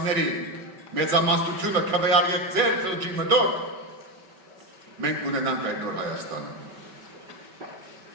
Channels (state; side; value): late; left; 5.3 ms